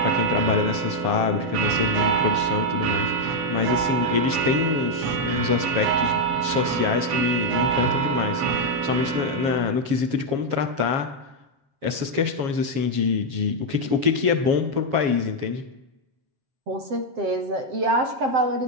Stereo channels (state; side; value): late; left; 7.2 ms